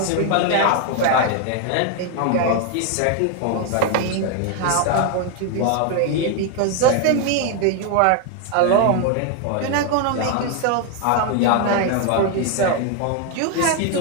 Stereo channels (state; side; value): different; both; correlation 0.01